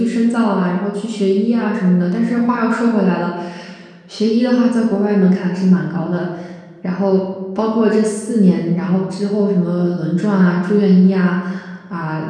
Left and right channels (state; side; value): identical; both; correlation 1.00